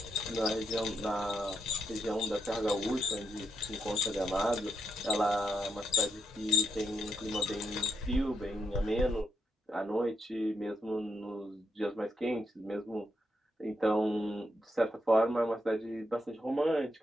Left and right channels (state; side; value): normal; both; correlation 0.80